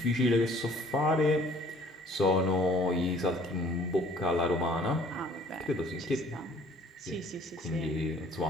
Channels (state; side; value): normal; both; correlation 0.56